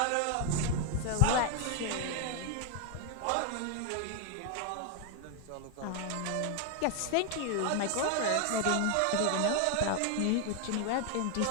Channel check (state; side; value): different; both; correlation 0.01